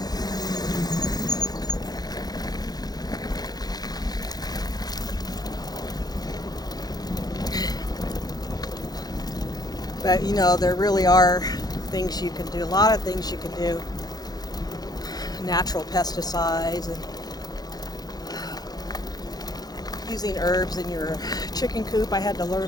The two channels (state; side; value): late; right; 0.19 ms